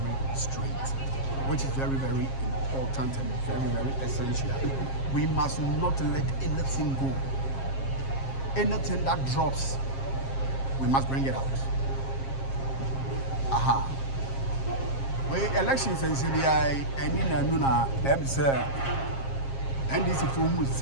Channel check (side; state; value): right; late; 7.5 ms